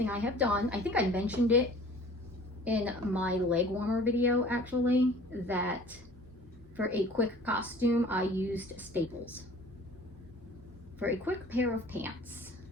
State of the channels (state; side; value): normal; both; correlation 0.48